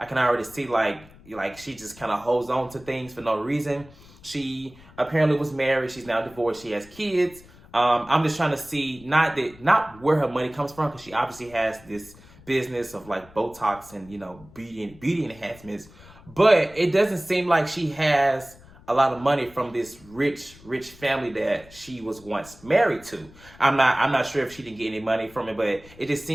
can already see like she just kind of holds on to things for no reason. She apparently was married. She's now divorced. She has kids. I'm just trying to see not where her money comes from, because she obviously has this business of like Botox and, beauty enhancements. But it doesn't seem like she has a lot of money from this rich family that she was once married to. I'm not sure if she didn't get any money from it, but it just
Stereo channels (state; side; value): noise; left; rumble, 23 dB below the sound